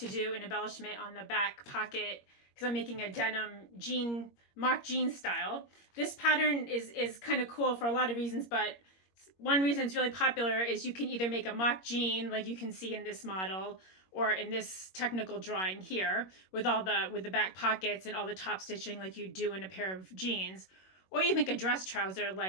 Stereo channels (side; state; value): right; late; 21 ms